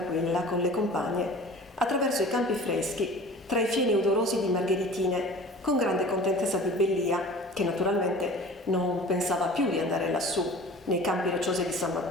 con le compagne attraverso i campi freschi, tra i fieni odorosi di margheritine, con grande contentezza di Bellia, che naturalmente non pensava più di andare lassù, nei campi rocciosi di San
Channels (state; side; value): normal; both; correlation 0.42